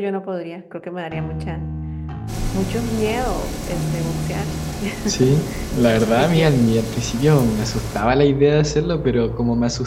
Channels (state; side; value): identical; both; correlation 1.00